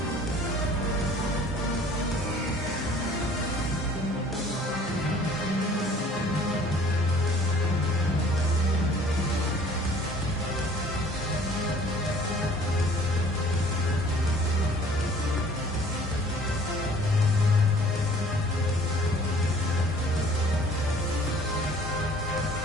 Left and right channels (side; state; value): both; normal; correlation 0.52